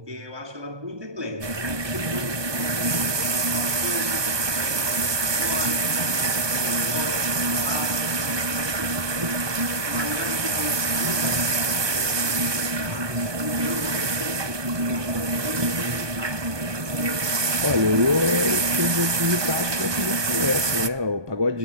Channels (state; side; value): late; left; 1.2 ms